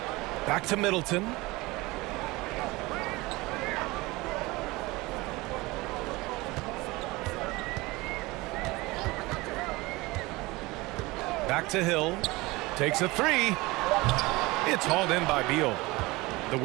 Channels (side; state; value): left; quieter; 21.9 dB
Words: Back to Middleton. Back to Hill. Takes a three. It's hauled in by Beal. The